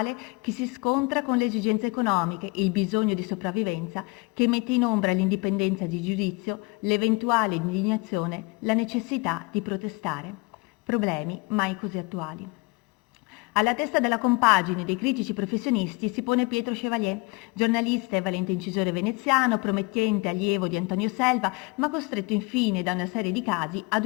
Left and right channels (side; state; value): right; quieter; 25.8 dB